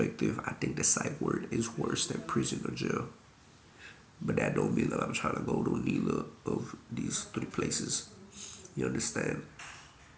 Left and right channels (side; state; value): both; identical; correlation 1.00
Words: I think the psych ward is worse than prison or jail. But that don't mean that I'm trying to go to neither of these three places. You understand?